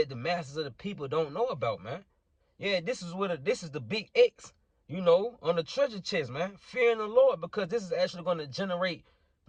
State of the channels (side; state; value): both; identical; correlation 1.00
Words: the masses of the people don't know about, man. Yeah, this is the big X, you know, on the treasure chest, man. Fearing the Lord, because this is actually going to generate